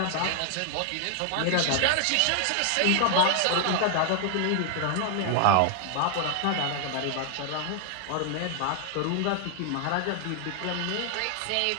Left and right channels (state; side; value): different; both; correlation 0.00